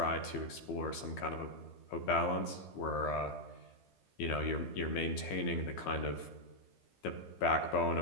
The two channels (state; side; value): late; right; 15 ms